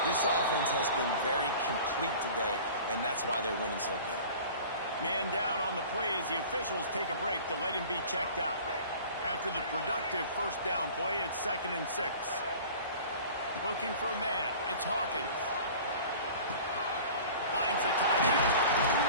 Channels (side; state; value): both; inverted; correlation -0.43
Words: this offense has been very complete today, and that's why they're winning so big. Man down on the play as the officials take a break to let him be checked out. After the productive first down play, it's 2nd and 6. Looking for a man. It's Hawkins. Finds the tight end.